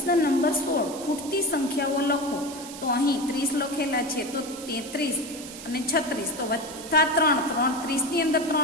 નંબર 16 ખૂટતી સંખ્યાઓ લખો. તો અહીં 30 લખેલા છે, તો 33 અને 36, તો વત્તા 3, 30 ની અંદર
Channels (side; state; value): right; noise; hiss, 13 dB below the sound